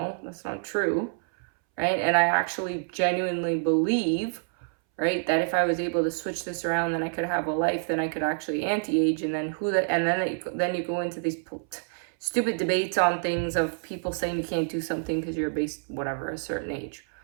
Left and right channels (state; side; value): silent; left; 60 dB below the other